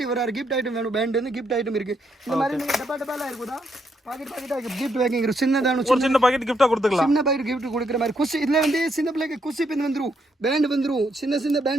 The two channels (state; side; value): normal; both; correlation 0.76